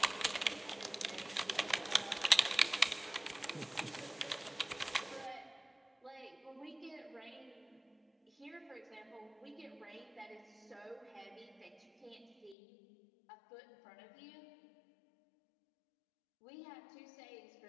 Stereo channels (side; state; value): right; drops out; at 12.6 s